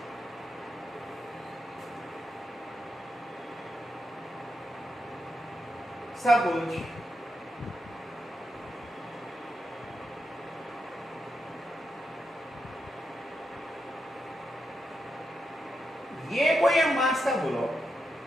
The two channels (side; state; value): both; normal; correlation 0.85